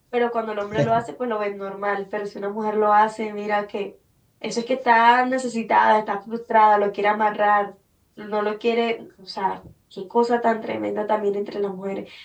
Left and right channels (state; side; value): identical; both; correlation 1.00